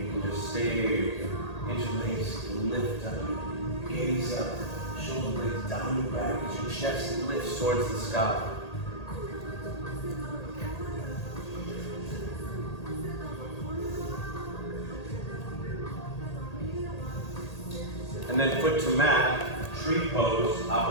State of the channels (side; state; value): right; late; 1.8 ms